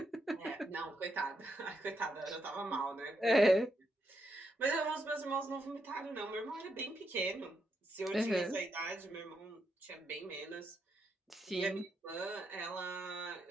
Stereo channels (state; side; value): normal; both; correlation 0.81